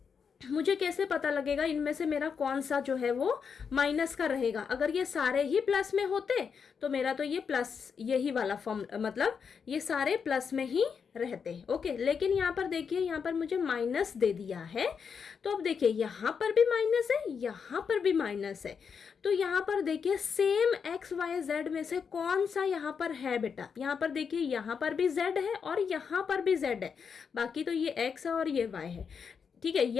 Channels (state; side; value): quieter; right; 6.3 dB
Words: मुझे कैसे पता लगेगा इनमें से मेरा कौन सा जो है वो माइनस का रहेगा। अगर ये सारे ही प्लस में होते तो मेरा तो ये प्लस, यही वाला फॉर्म, मतलब ये सारे प्लस में ही रहते, ओके। लेकिन यहाँ पर देखिए, यहाँ पर मुझे माइनस दे दिया है, तो अब देखिए यहाँ पर भी माइनस है, यहाँ पर भी माइनस है, तो यहाँ पर देखिए सेम XYZ में से कौन सा यहाँ पर है बेटा। यहाँ पर देखिए, यहाँ पर भी Z है और यहाँ पर भी Z है, बाकी तो ये X है और ये Y है, ठीक है।